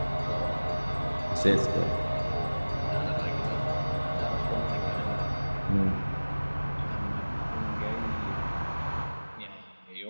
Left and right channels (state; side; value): inverted; both; correlation -1.00